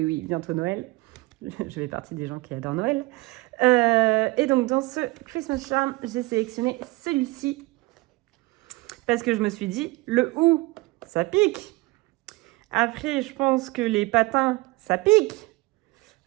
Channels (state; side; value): quieter; left; 22.8 dB